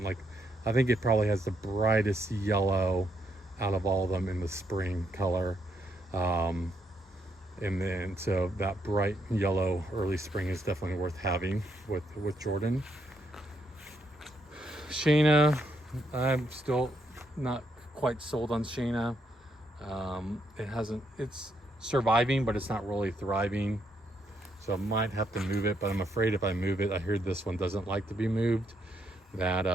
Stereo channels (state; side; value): normal; both; correlation 0.76